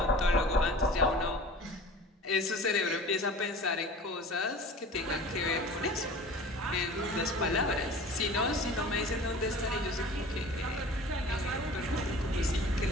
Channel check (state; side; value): normal; both; correlation 0.41